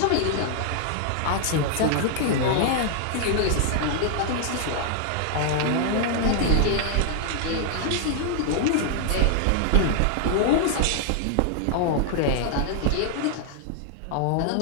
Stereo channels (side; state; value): both; different; correlation 0.00